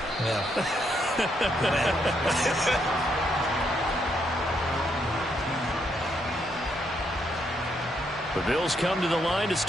Yeah. The Bills come to the line to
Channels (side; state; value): both; normal; correlation 0.76